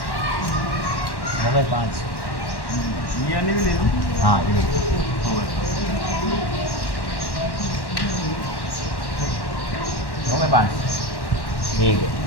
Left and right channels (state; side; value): late; right; 1.1 ms